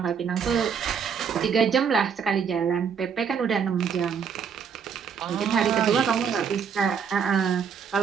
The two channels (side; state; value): left; quieter; 6.8 dB